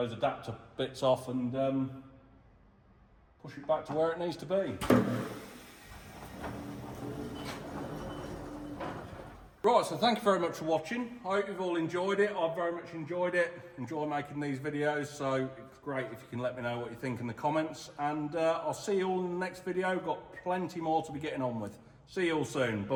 adapter bits off and push it back to where it needs to be. Right, so thank you very much for watching. I hope you've all enjoyed it. I've very much enjoyed it. Enjoy making these videos, so it's great if you can let me know what you think in the comments. And I'll see you all in the next video. Got plenty more to be getting on with. See you all soon.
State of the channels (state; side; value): identical; both; correlation 1.00